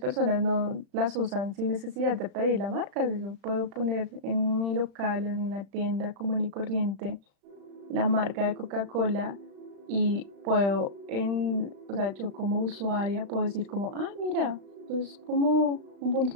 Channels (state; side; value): late; left; 35 ms